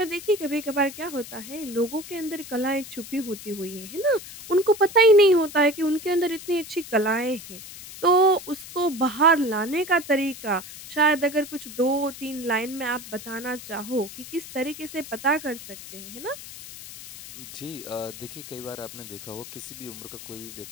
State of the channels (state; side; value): noise; left; hiss, 14 dB below the sound